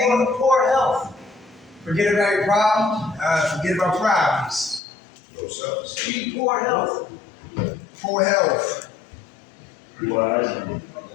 poor health. Forget about your problems. Forget about problems. Low self-esteem. Poor health. Poor health.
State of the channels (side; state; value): right; drops out; at 4.8 s